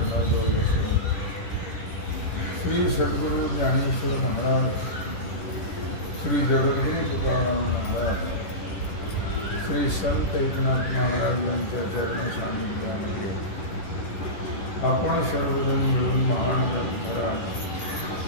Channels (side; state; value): right; late; 10 ms